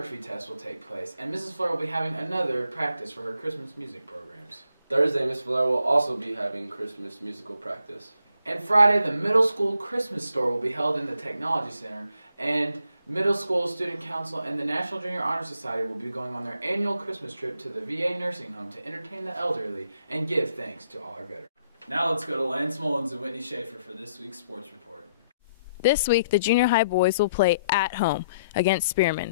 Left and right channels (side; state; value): both; inverted; correlation -0.72